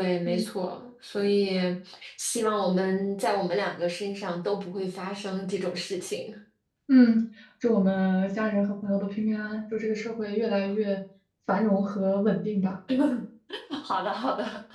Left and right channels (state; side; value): identical; both; correlation 1.00